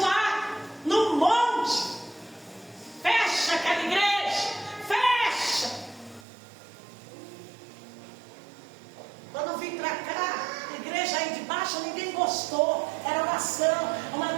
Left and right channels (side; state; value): left; drops out; at 6.2 s